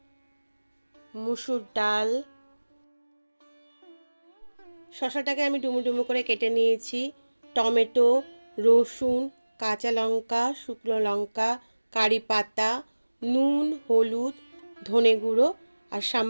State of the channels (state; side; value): inverted; both; correlation -1.00